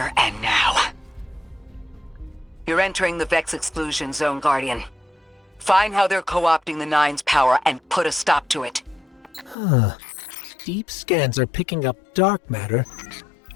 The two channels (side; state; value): right; drops out; at 9.6 s